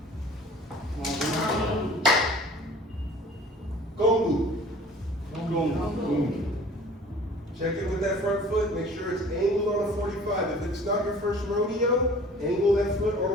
Gongbu. Check in with that front foot. Make sure it's angled on a 45. If it's not your first rodeo, angle that foot on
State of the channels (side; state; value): both; normal; correlation 0.47